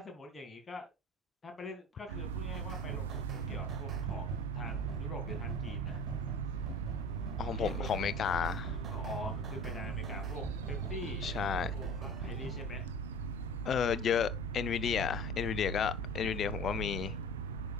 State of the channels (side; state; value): both; normal; correlation 0.39